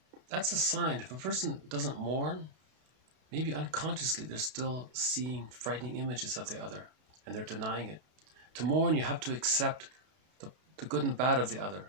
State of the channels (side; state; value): left; late; 32 ms